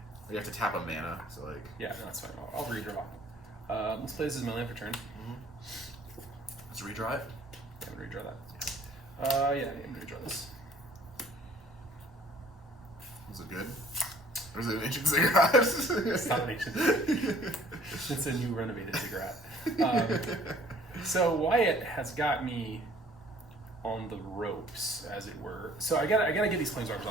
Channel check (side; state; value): both; normal; correlation 0.55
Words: You have to tap a mana, so like. Yeah, no, that's fine. I'll redraw. Let's play this as my land for turn. Let's redraw it. I'm gonna redraw that. Yeah, I'm gonna redraw this. Was it good? Or is it an ancient ziggurat? It's not an ancient ziggurat. It's a new renovated ziggurat. So Wyatt has got me on the ropes, as it were. So I gotta get these planeswalkers